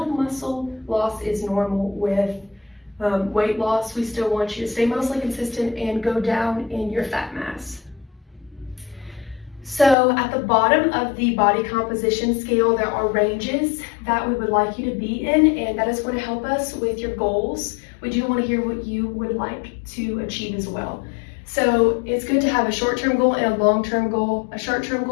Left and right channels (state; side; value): drops out; right; at 10.0 s